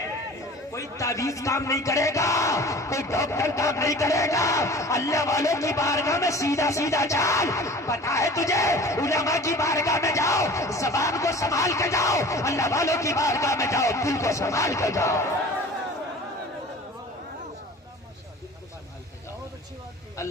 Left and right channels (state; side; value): normal; both; correlation 0.42